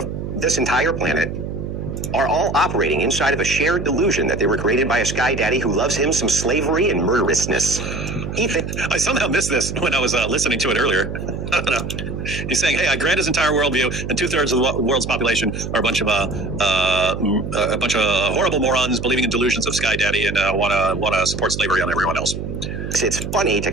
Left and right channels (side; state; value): right; noise; hum, 6 dB below the sound